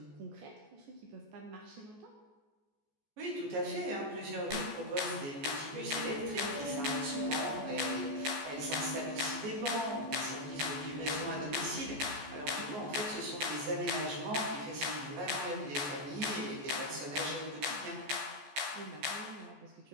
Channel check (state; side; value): late; left; 14 ms